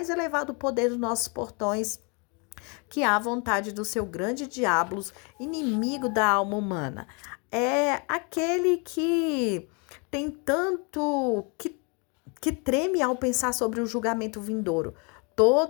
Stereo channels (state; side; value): quieter; right; 33.4 dB